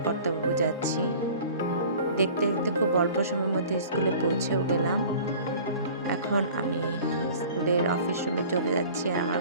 কর্তাবাবু যাচ্ছি। দেখতে দেখতে খুব অল্প সময়ের মধ্যে স্কুলে পৌঁছেও গেলাম। এখন আমি স্কুলের অফিস রুমে চলে যাচ্ছি আর আমার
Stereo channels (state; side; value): inverted; both; correlation -0.45